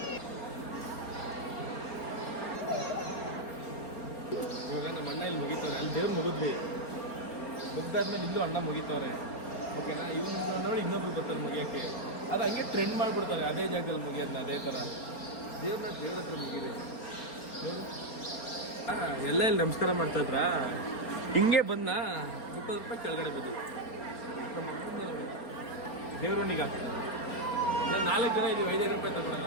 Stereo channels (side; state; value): right; late; 4.3 ms